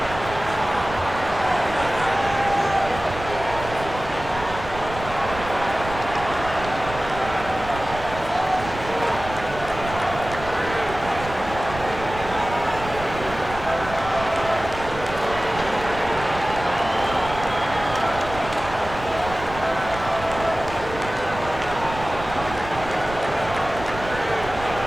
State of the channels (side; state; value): right; noise; rumble, 12 dB below the sound